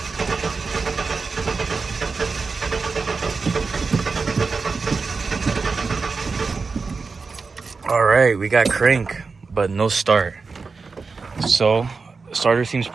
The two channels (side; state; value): left; quieter; 4.5 dB